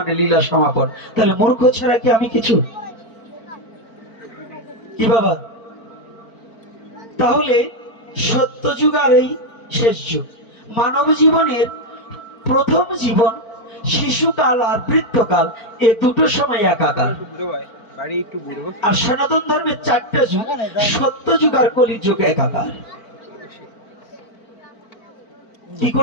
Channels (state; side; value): late; right; 4.4 ms